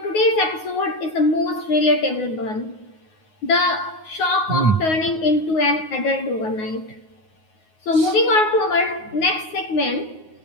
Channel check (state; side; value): late; right; 9.5 ms